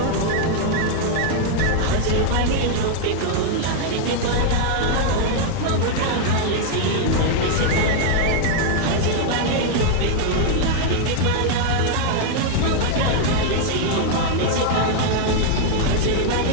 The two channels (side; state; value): both; different; correlation 0.00